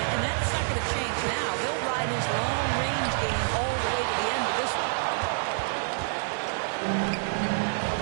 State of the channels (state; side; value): silent; left; digital silence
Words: and that's not going to change now. They'll ride his long-range game all the way to the end of this one.